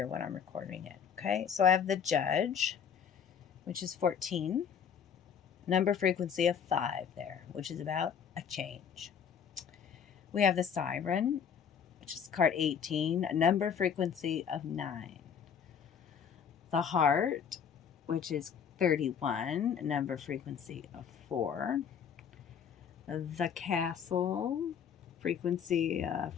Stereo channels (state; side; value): quieter; right; 7.5 dB